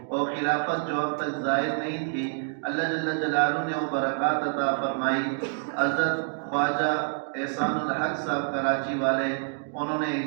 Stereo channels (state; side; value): silent; left; digital silence